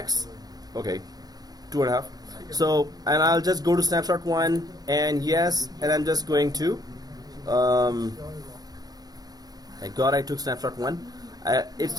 Okay, 2.5. So, and I'll just go to snapshot 1 and yes, and I'm just going to thank God I took snapshot 1. It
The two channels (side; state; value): left; late; 0.19 ms